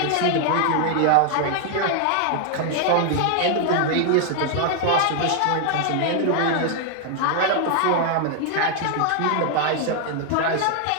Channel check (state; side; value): different; both; correlation 0.00